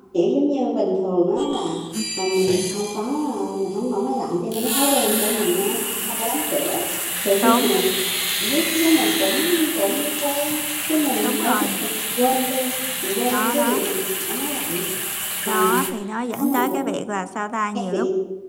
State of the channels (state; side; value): identical; both; correlation 1.00